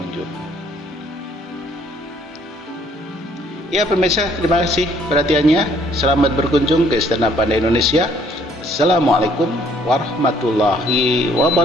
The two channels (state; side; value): normal; both; correlation 0.62